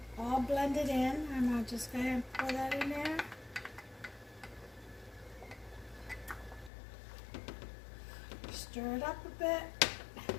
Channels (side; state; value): right; drops out; at 6.7 s